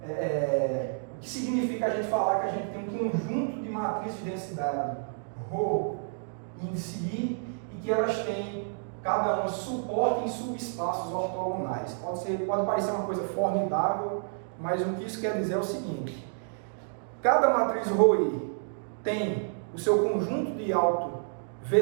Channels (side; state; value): left; silent; digital silence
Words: o que significa a gente falar que a gente tem um conjunto de matrizes de densidade ρ, índice I, e que elas têm cada uma suporte em subespaços ortogonais. Pode parecer uma coisa formidável, mas o que isso quer dizer é o seguinte: cada matriz ρI tem o seu conjunto de